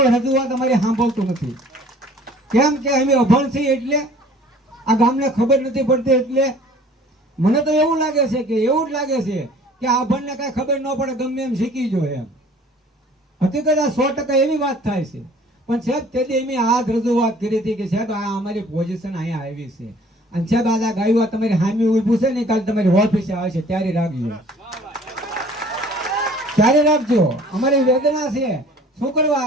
રજૂઆત અમારી સાંભળતું નથી? કેમ કે અમે અભણ છીએ એટલે આ ગામને ખબર નથી પડતી. એટલે મને તો એવું લાગે છે કે એવું જ લાગે છે કે આ અભણને કાંઈ ખબર ન પડે, ગમે એમ શીખી જોઈએ એમ. હકીકત આ 100% એવી વાત થાય છે. પણ સાહેબ તેથી અમે આ રજૂઆત કરી હતી કે સાહેબ આ અમારી પોઝિશન અહીંયા આવી છે, અને સાહેબ આ ગાયું તમારી હામી ઊભું છે ને, કાલે તમારી ઓફિસે આવે છે ત્યારે રાખજો, ત્યારે રાખજો. અમારી વેદના છે. શું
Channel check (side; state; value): both; normal; correlation 0.52